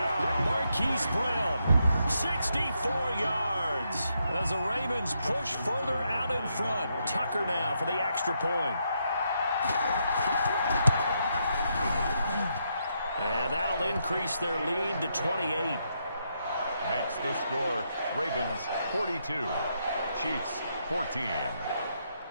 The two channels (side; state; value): both; inverted; correlation -0.79